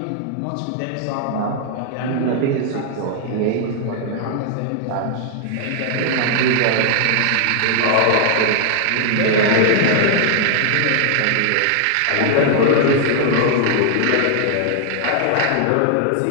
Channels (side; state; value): both; different; correlation 0.00